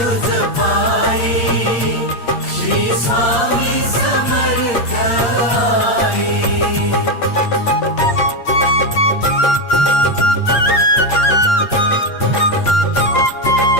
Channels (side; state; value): right; late; 8.6 ms